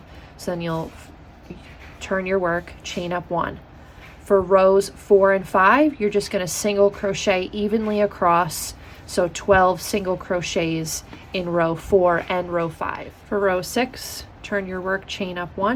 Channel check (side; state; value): both; identical; correlation 1.00